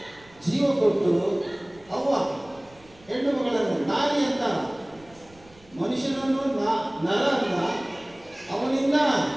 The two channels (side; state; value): right; noise; rumble, 27 dB below the sound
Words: ಜೀವ ಕೊಟ್ಟು ಅವ್ವ ಹೆಣ್ಣು ಮಗಳನ್ನು ನಾರಿ ಅಂತ ಮನುಷ್ಯನನ್ನು ನರ ಅಂತ ಅವನಿಂದ